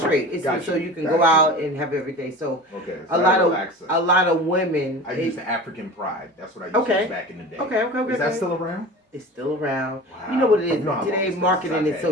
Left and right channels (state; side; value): normal; both; correlation 0.35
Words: It's Gotcha. so you can go out and have everything. So Okay. a lot of women. I used the African Pride. That's what I used to use back in the day. Okay. Is that still around? It's still around. Wow. You know what it is. You know how long Today it's marketing been is so